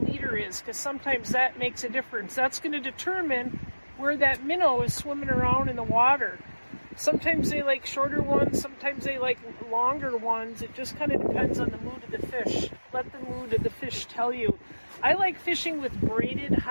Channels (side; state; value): both; inverted; correlation -1.00